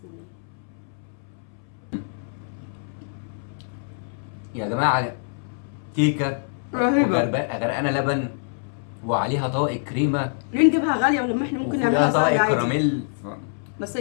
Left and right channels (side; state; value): right; silent; 62 dB below the other